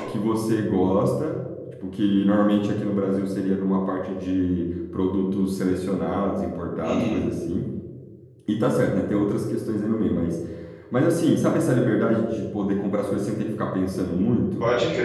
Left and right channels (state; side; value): identical; both; correlation 1.00